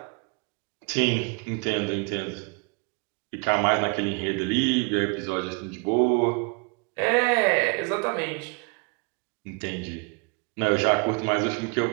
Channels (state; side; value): quieter; left; 33.4 dB